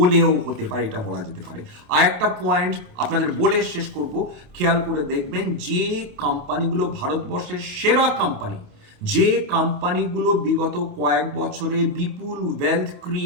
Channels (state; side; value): late; left; 28 ms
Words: হতে পারে, এটা বলা যেতে পারে। আর একটা পয়েন্ট আপনাদের বলে শেষ করব, খেয়াল করে দেখবেন যে কোম্পানিগুলো ভারতবর্ষের সেরা কোম্পানি, যে কোম্পানিগুলো বিগত কয়েক বছরে বিপুল ওয়েলথ